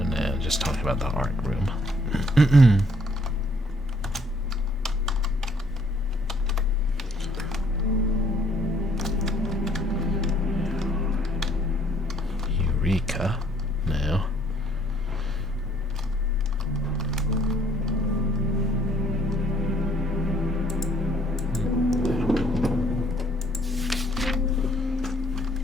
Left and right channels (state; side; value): normal; both; correlation 0.64